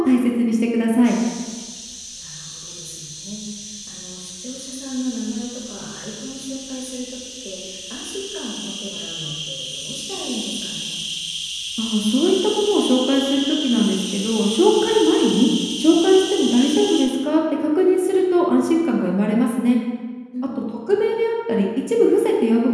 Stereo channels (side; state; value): both; identical; correlation 1.00